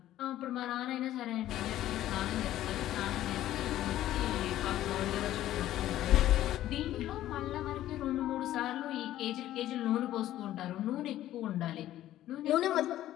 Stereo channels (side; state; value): right; quieter; 13.4 dB